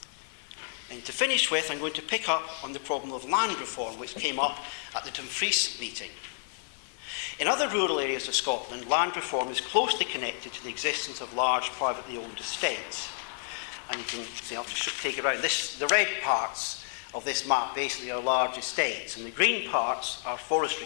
And to finish with, I'm going to pick up on the problem of land reform, which came up at the Dumfries meeting. In other rural areas of Scotland, land reform is closely connected to the existence of large privately owned estates. And you can see, I'll just take it around. The red parts of this map basically are large estates, and the green parts are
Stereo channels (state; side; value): silent; right; 58 dB below the other